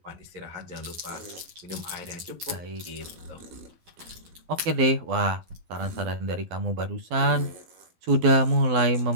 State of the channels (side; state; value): left; late; 12 ms